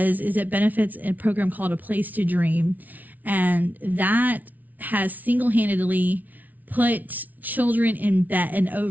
is it benefits a program called A Place to Dream. And that has single-handedly put children in bed, and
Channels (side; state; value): left; late; 0.078 ms